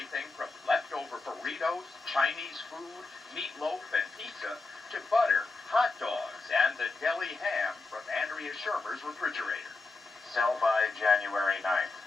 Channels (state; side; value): quieter; right; 3.6 dB